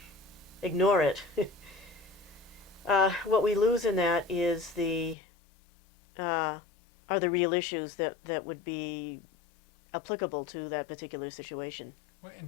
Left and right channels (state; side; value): drops out; right; at 5.2 s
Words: ignore it, what we lose in that is uh, are the real issues that would be applicable to that particular situation. well,